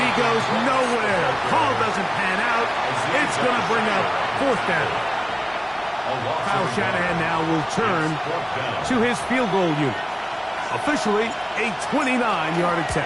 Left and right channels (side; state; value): both; identical; correlation 1.00